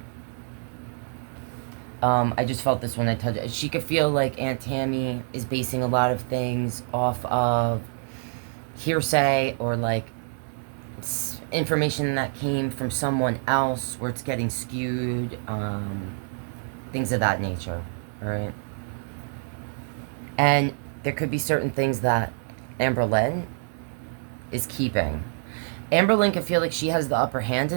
I just felt this when I touched it. She could feel like Aunt Tammie is basing a lot of things off of hearsay, or like information that came from someone else where it's getting skewed, things of that nature. All right. And there could be certain things that Amberlynn is keeping. Amberlynn can feel like she has the upper hand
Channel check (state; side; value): silent; left; digital silence